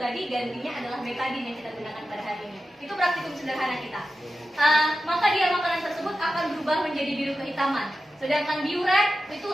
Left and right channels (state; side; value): normal; both; correlation 0.92